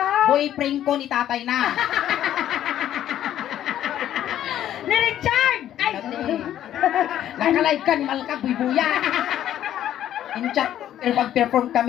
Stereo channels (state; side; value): quieter; right; 11.5 dB